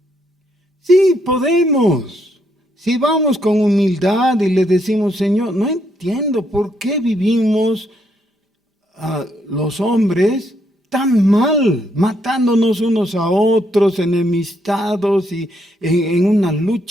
Sí, podemos. Si vamos con humildad y le decimos, Señor, no entiendo por qué vivimos los hombres tan mal, matándonos unos a otros, enemistados y en una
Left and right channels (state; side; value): normal; both; correlation 0.74